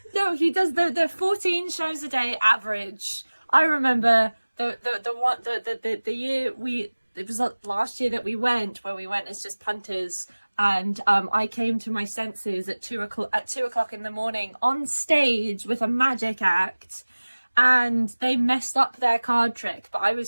No, he does the 14 shows a day average. I remember the year it was last year that we went as just punters, and I came to my senses at 2:00 in the morning on stage with a magic act. And they messed up their card trick, but I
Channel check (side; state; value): both; inverted; correlation -1.00